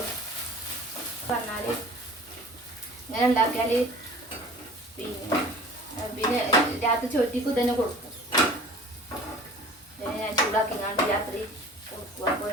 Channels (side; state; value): both; normal; correlation 0.45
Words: പറഞ്ഞാൽ ഇങ്ങനെ ഉണ്ടാക്കിയാൽ പിന്നെ രാത്രി ചോറ്റിക്ക് തന്നെ കൊടുക്കും. ഞാൻ ചൂടാക്കി കണ്ട് രാത്രി കൊടുക്കും. അപ്പോൾ